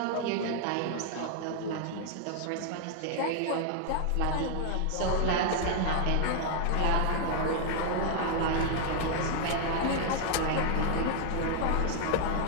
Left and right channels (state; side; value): different; both; correlation 0.00